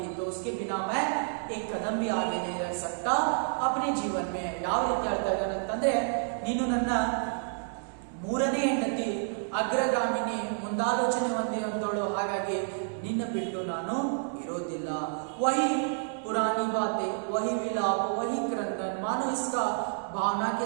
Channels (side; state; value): left; silent; digital silence